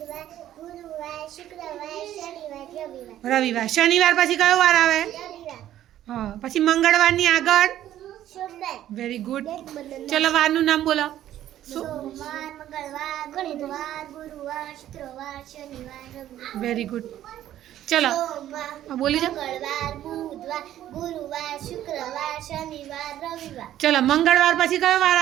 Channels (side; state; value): left; quieter; 12.3 dB